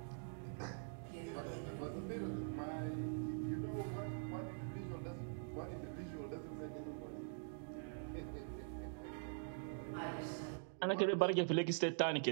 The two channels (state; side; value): silent; left; digital silence